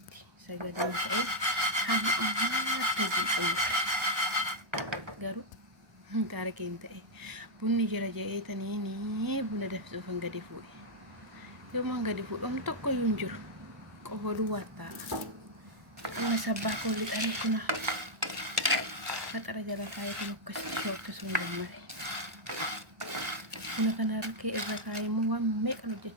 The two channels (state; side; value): late; left; 1.0 ms